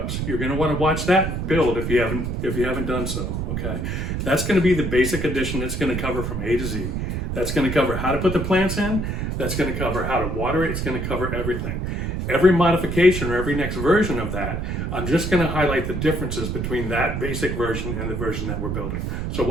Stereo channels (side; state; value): right; noise; rumble, 2 dB below the sound